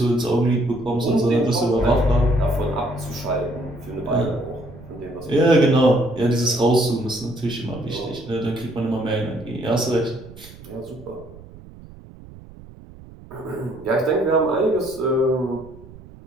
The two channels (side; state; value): right; noise; rumble, 19 dB below the sound